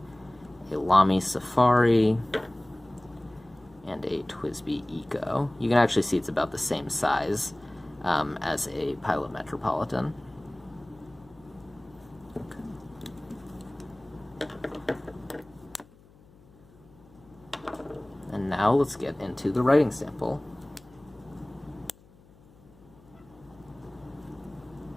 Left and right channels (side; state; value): left; noise; hum, 26 dB below the sound